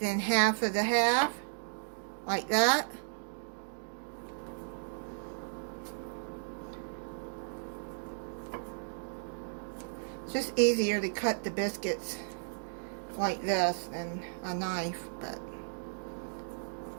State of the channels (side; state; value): left; silent; digital silence